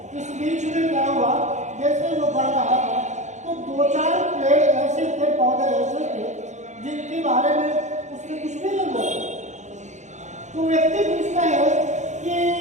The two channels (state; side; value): late; left; 0.34 ms